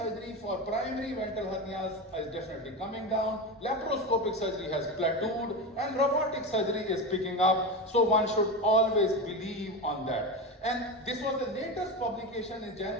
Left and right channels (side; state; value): both; normal; correlation 0.20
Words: for primary ventral hernias is definitely coming down, laparoscopic surgery has plateaued, and robotic surgery is picking up. So one should always believe on that. And this was the latest publication in